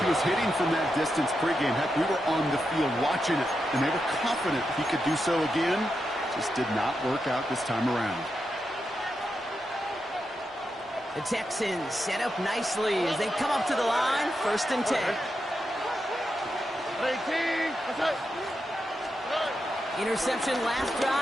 He was hitting from that distance pregame. Heck, we were on the field watching it, and they were confident he could do so again. Just did not work out this time around. The Texans set up nicely as they come up to the line, 1st and 10. Interception last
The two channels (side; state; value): both; normal; correlation 0.86